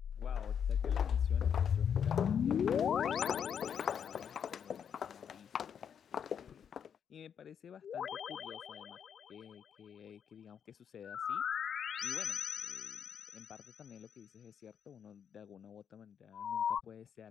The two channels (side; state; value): right; quieter; 7.9 dB